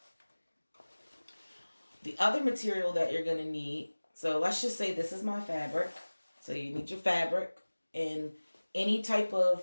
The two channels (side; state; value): both; inverted; correlation -1.00